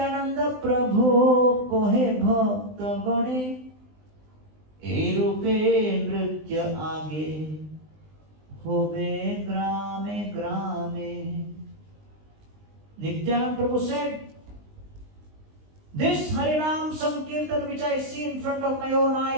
Prabhu kohe bhakta gane, e rupe nritya aage, hobe grame grame. Nityananda Prabhu said, this Harinam Sankirtan which I see in front of my own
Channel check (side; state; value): left; late; 20 ms